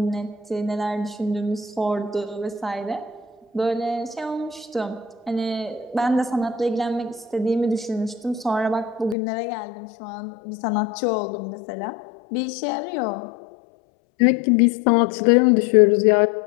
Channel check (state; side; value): drops out; right; at 9.2 s